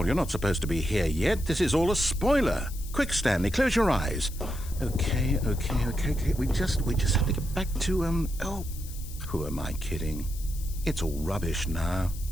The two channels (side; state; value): left; noise; hiss, 16 dB below the sound